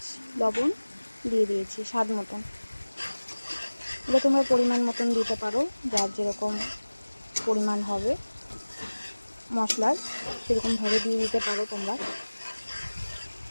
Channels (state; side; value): inverted; both; correlation -1.00